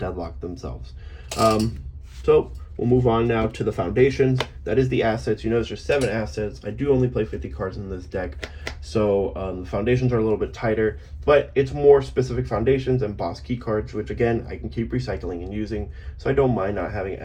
themselves. So we'll move on now to the foundations. That is the assets. You notice there's 7 assets. I do only play 50 cards in this deck, so the foundations are a little bit tighter, but it's more specific foundations and boss key cards, which again, I can keep recycling and using, so I don't mind not having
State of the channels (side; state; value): both; identical; correlation 1.00